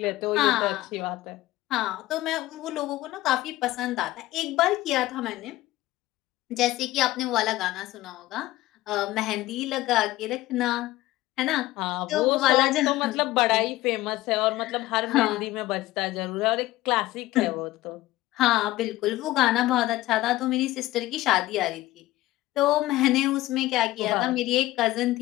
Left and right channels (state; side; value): quieter; right; 17.1 dB